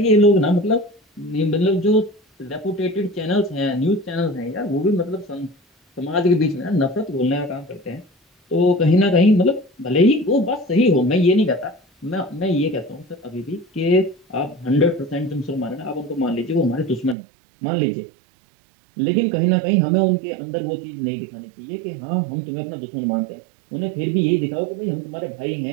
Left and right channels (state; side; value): drops out; left; at 17.2 s